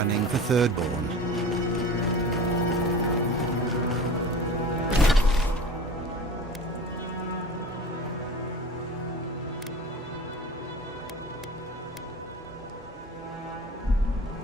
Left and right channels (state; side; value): normal; both; correlation 0.36